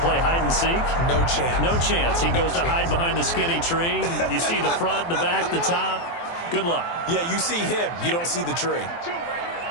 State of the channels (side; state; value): right; late; 23 ms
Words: hide and seek. No chance. No chance. He goes to hide behind the skinny tree. You see the front, the back, the top. Good luck. Yeah, you see him. You don't see the tree.